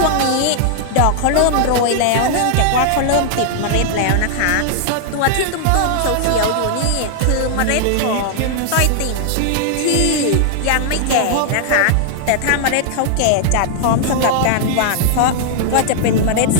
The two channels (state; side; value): different; both; correlation -0.01